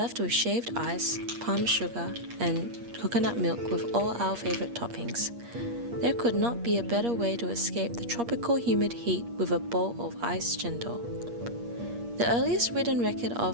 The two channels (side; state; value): left; late; 8.5 ms